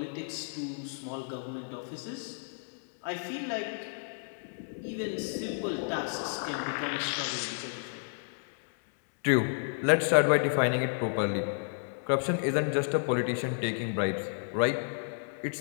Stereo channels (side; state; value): right; silent; digital silence